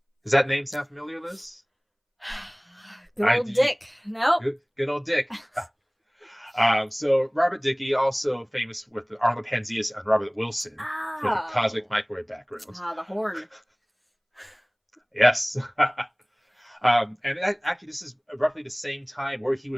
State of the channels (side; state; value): both; identical; correlation 1.00